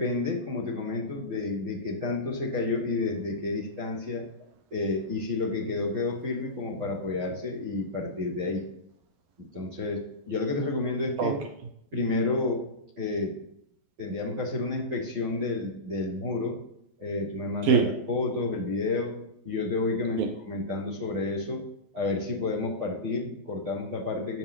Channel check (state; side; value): late; left; 12 ms